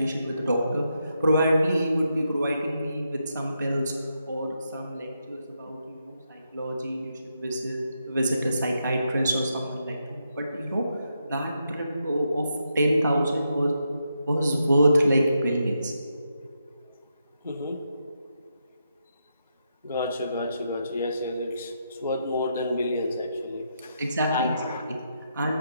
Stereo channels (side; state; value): both; inverted; correlation -0.82